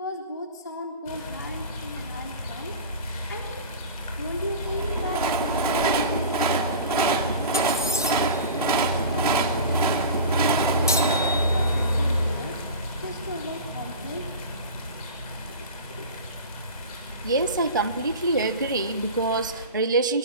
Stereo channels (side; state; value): both; inverted; correlation -0.33